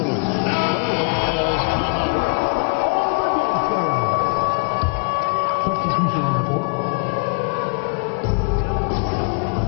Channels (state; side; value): quieter; right; 37.6 dB